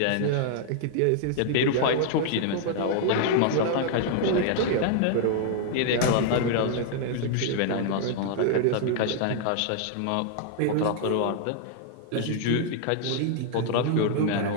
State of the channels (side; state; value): both; different; correlation -0.01